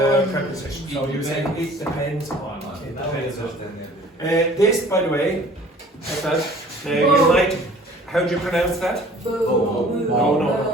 preposition. So you say, it depends on. It depends on. This, by the way, like that, you might, how do you pronounce that? No.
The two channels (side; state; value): both; normal; correlation 0.50